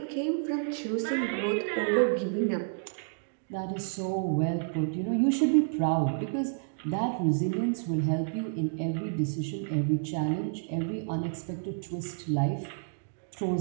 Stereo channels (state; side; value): silent; left; digital silence